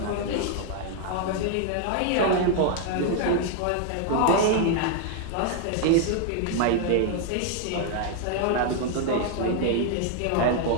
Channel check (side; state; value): both; different; correlation 0.00